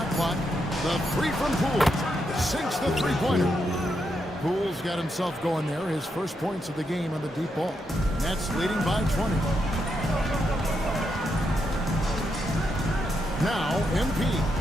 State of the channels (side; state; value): both; normal; correlation 0.81